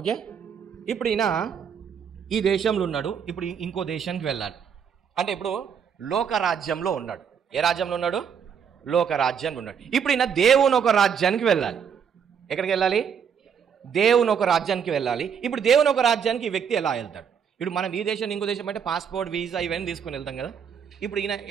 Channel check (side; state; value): left; quieter; 7.4 dB